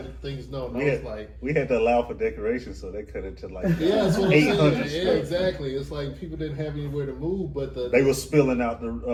let things known, I We was had, like, we had to allow for decoration, so they cut it to like yeah, that's what I'm 800 saying. square Yeah, feet. exactly. It's like people didn't have anywhere to move, but They were spilling out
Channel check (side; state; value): both; identical; correlation 1.00